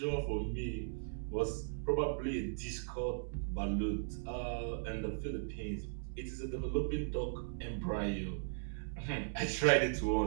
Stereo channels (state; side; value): silent; left; digital silence